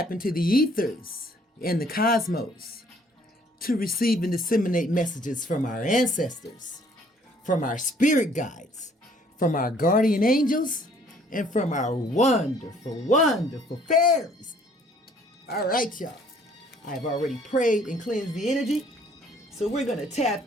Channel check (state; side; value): normal; both; correlation 0.60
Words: into the ethers and the cosmos to receive and disseminate messages from our ancestors, from our spirit guides, from our guardian angels, and from our wonderful, wonderful fairies. All right, y'all. I've already prayed and cleansed the energy, so we're going to